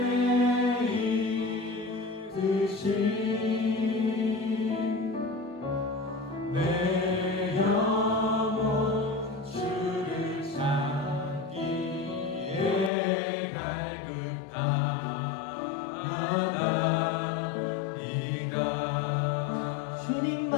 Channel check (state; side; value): drops out; right; at 12.9 s